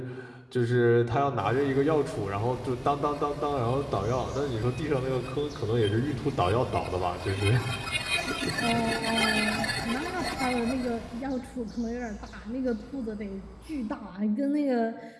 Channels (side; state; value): both; identical; correlation 1.00